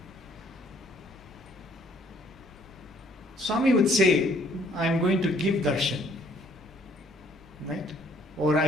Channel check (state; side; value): noise; right; hum, 28 dB below the sound